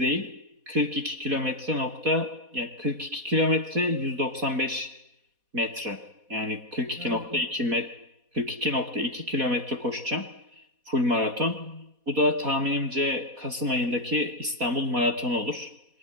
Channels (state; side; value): late; left; 4.1 ms